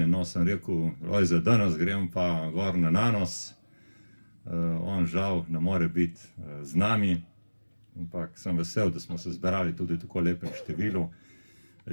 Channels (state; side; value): inverted; both; correlation -1.00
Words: no, sem rekel, Lojze, danes grem pa gor na Nanos. On žal ne more biti z nami, ampak sem vesel, da smo se zberali tudi tako lepem številu.